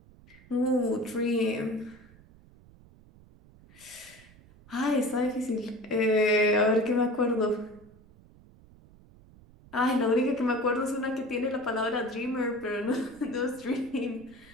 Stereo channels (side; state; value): right; noise; rumble, 25 dB below the sound